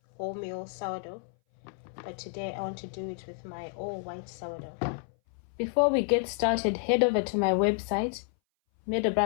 wholemeal sourdough, but today I want to do it with my all white sourdough. Before we get started, head over to my website,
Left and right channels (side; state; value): right; silent; 58 dB below the other